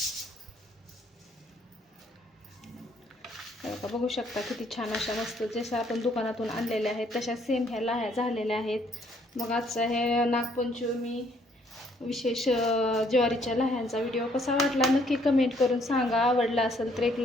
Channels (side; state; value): both; normal; correlation 0.66